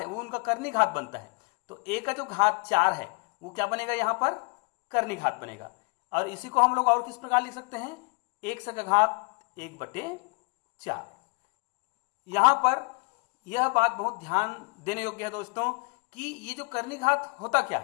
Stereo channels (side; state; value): right; quieter; 32.0 dB